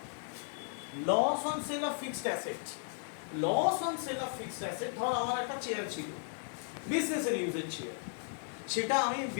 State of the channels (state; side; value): silent; right; 54 dB below the other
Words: loss on sale of fixed asset, loss on sale of fixed asset, ধর আমার একটা চেয়ার ছিল, বিজনেসের ইউজের চেয়ার, সেটা আমি